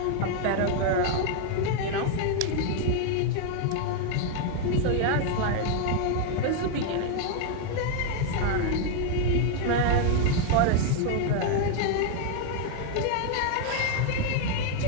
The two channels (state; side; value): different; both; correlation 0.00